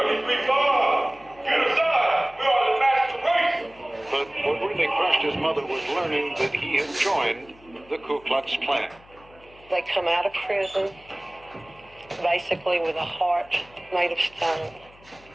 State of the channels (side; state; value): left; noise; hum, 26 dB below the sound